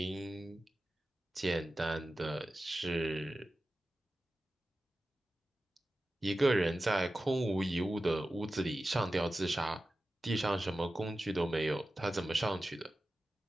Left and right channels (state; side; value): normal; both; correlation 0.94